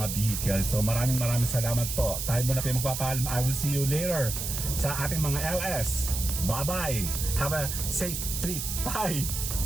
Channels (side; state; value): right; noise; hiss, 4 dB below the sound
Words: vehicles. So maraming salamat po. Tayo muna po yung magpapaalam. I will see you later sa ating mga LS. Bye-bye. Have a safe trip. Bye.